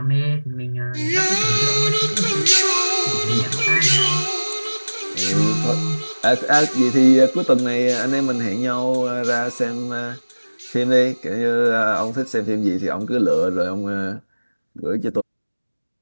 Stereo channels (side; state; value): both; inverted; correlation -1.00